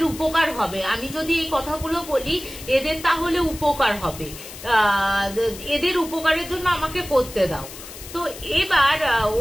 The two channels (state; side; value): noise; left; hiss, 14 dB below the sound